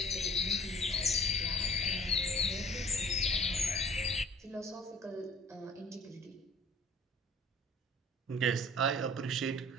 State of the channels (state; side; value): normal; both; correlation 0.48